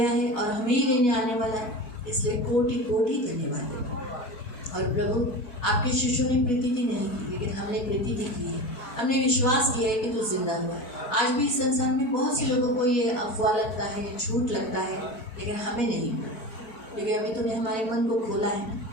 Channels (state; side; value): late; right; 4.1 ms